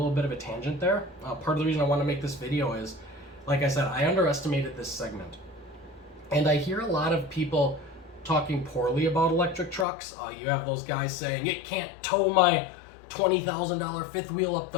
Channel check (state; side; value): drops out; right; at 9.9 s